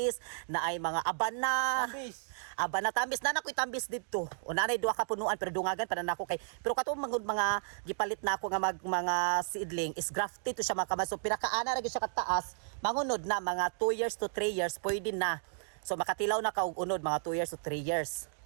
na ay mga abana. Tambis. Abana tambis na nakoy tambis dito. O nanay duha ka punuan pero dungagan pa na nako kay. Pero katong mga gipalit na ako nga mga seedling is grafted to siya mga kamas. So pinakaana ra gyud siya kataas, mangunod na mga 2 years to 3 years pwede na. So makatilaw na ka og unod mga 2 years to 3 years.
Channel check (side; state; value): left; silent; digital silence